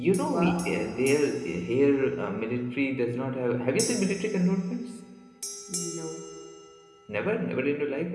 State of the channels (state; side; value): identical; both; correlation 1.00